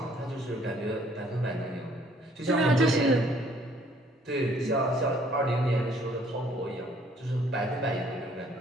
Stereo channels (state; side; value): normal; both; correlation 0.61